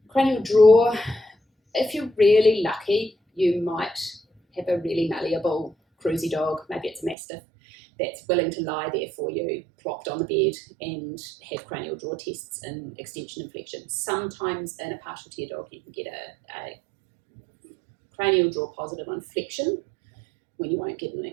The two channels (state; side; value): drops out; left; at 7.2 s